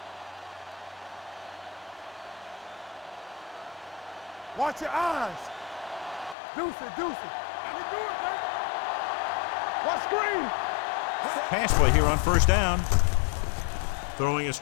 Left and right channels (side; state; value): right; drops out; at 6.4 s